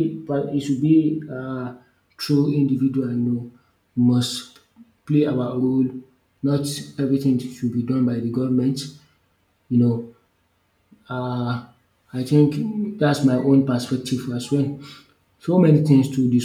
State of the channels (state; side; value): identical; both; correlation 1.00